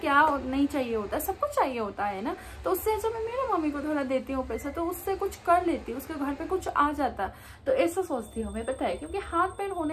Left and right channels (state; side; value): identical; both; correlation 1.00